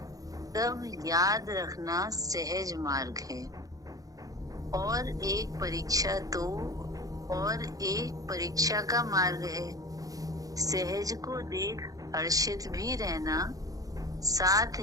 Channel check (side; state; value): left; late; 0.17 ms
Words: तब याद रखना सहज मार्ग है। और एक परीक्षा तो और एक परीक्षा का मार्ग है। सहज को देख हर्षित भी रहना, साथ